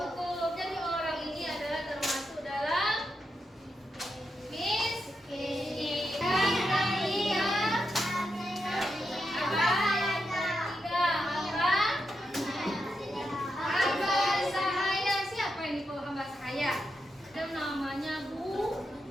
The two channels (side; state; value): both; normal; correlation 0.85